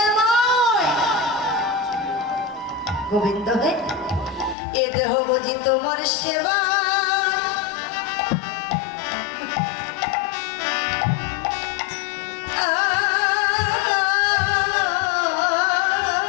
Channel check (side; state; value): right; drops out; at 4.5 s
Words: গোবিন্দ হে এ দেহ বুঝি তোমার সেবা